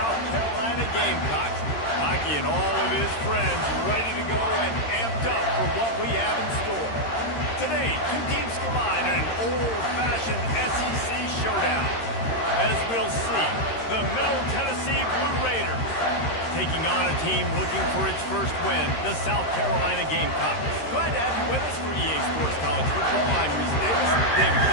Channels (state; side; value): late; right; 13 ms